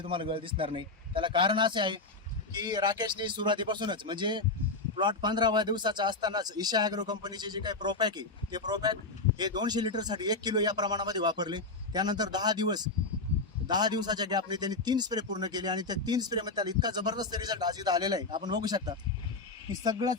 तुम्हाला गळ दिसणार नाही. त्याला कारण असे आहे की राकेशने सुरुवातीपासूनच म्हणजे प्लॉट 15व्या दिवसाचा असतानाच ईशा ॲग्रो कंपनीचे जे काही प्रोपॅक आहे ते प्रोपॅक हे 200 लिटरसाठी 1 किलो या प्रमाणामध्ये वापरले. त्यानंतर 10 दिवसाच्या गॅपने त्यांनी 3 स्प्रे पूर्ण केले आणि त्या 3 स्प्रेमध्ये त्याला इतका जबरदस्त रिझल्ट आज इथं आलेला आहे. आपण बघू शकता की सगळाच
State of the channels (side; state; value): right; quieter; 3.5 dB